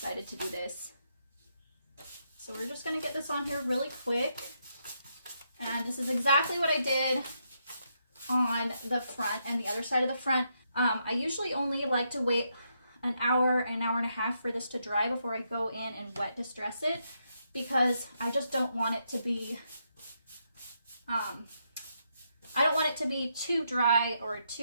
to do this. So we're just gonna get this on here really quick. And this is exactly what I did on the front and the other side of the front. I usually only like to wait an hour and a half for this to dry before I go in and wet distress it, because I just don't want it to be, I don't want it to be too dry or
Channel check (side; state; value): both; inverted; correlation -0.79